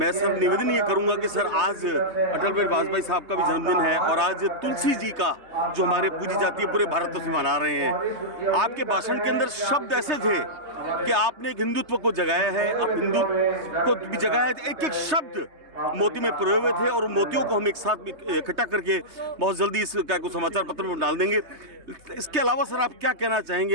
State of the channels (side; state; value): left; late; 3.2 ms